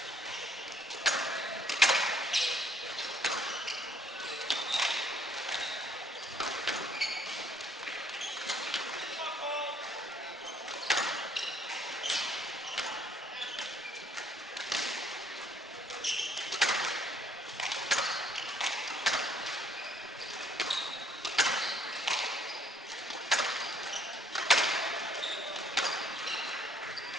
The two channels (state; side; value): normal; both; correlation 0.63